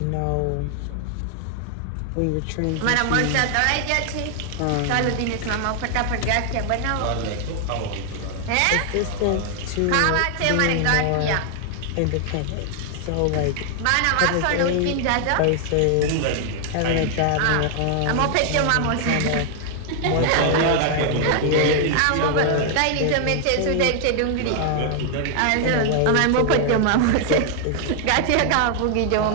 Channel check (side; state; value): both; different; correlation 0.00